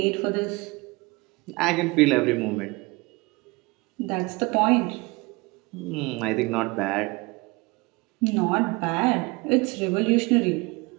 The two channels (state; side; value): quieter; left; 25.0 dB